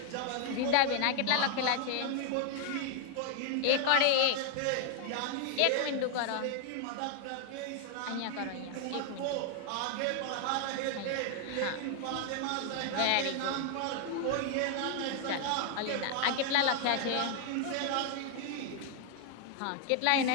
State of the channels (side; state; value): both; different; correlation 0.00